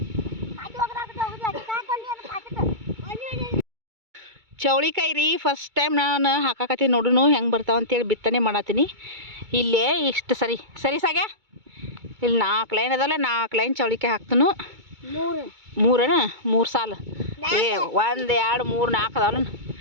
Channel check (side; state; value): left; late; 2.2 ms